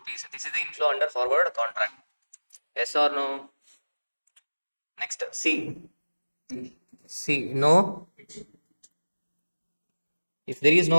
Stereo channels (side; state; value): both; inverted; correlation -1.00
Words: This is the inflow under forward contract. Yes or no? Next, C. No. If there is